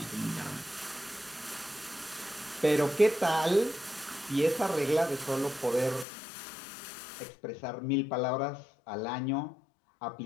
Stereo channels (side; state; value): right; drops out; at 6.1 s